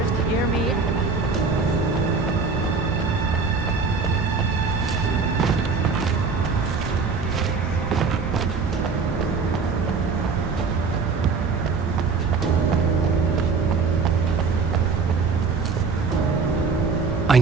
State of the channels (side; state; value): left; quieter; 4.8 dB